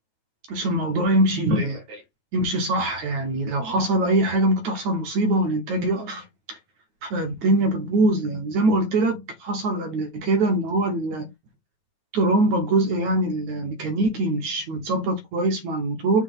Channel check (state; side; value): late; left; 9.2 ms